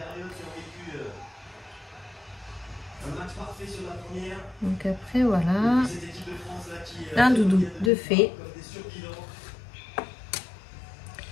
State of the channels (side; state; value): right; drops out; at 7.9 s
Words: Donc après, voilà, un doudou de fait.